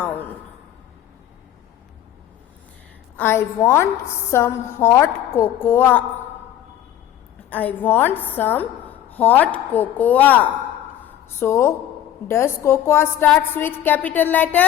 I want some hot cocoa. I want some hot cocoa. So, does cocoa starts with capital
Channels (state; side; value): quieter; right; 11.4 dB